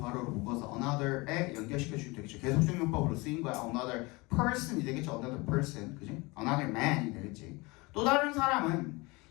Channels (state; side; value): quieter; right; 24.9 dB